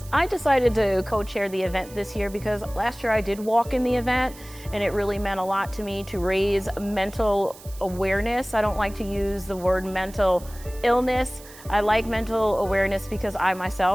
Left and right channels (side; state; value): right; noise; hiss, 19 dB below the sound